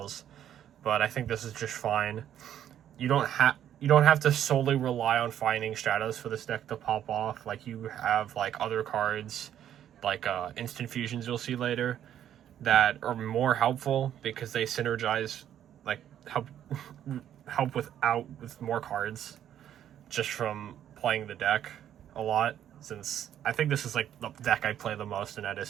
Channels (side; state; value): left; quieter; 10.5 dB